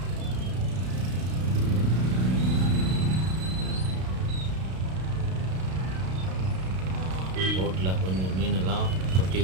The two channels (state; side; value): late; left; 32 ms